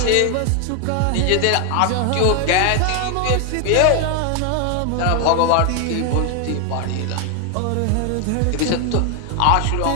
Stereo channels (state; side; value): different; both; correlation 0.00